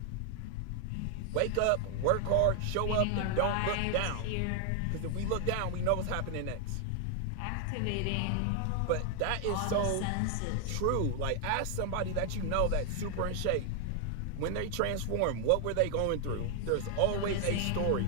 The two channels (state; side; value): different; both; correlation 0.00